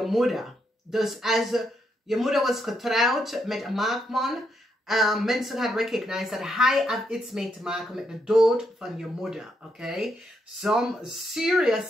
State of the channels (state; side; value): normal; both; correlation 0.78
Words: moeder. Dus als je moeder was getrouwd met een maagman, mensen gaan recognize dat hij heeft iets mee te maken met de dood van je moeder. Oké? Some